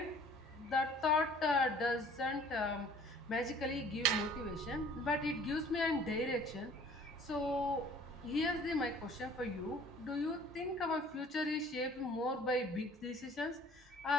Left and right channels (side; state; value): both; normal; correlation 0.52